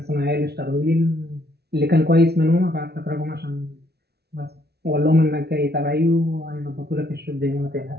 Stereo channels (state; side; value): late; left; 0.48 ms